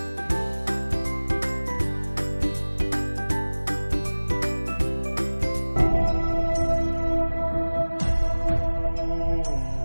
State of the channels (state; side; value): inverted; both; correlation -1.00